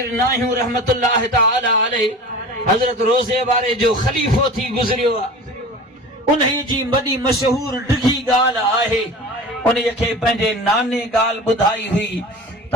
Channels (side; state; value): both; normal; correlation 0.36